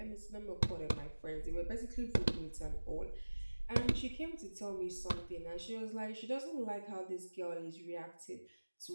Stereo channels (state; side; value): inverted; both; correlation -1.00